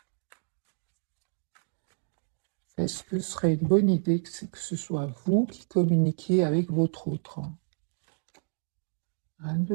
Est-ce que ce serait une bonne idée que ce soit vous qui communiquiez avec votre autre? Un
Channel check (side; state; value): left; silent; digital silence